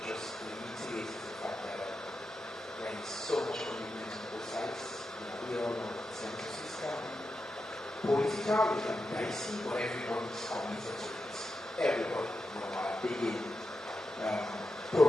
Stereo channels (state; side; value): normal; both; correlation 0.89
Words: just reiterate, is the fact that there is so much commitment on both sides. We all know that the census is political, it can be dicey, but everybody is committed to it. Everybody, are big